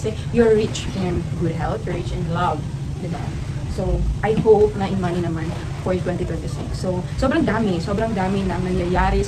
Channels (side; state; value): both; identical; correlation 1.00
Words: you're rich in good health, you're rich in love. Diba? So, I hope na in money naman for 2026. So, sobrang dami na nangyayari